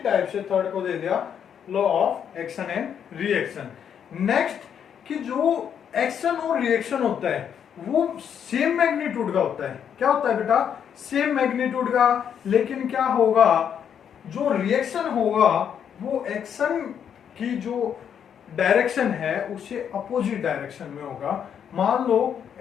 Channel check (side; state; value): right; quieter; 8.3 dB